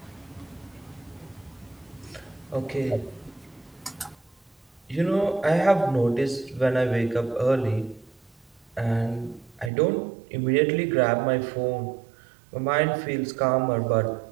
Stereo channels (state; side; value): drops out; left; at 9.7 s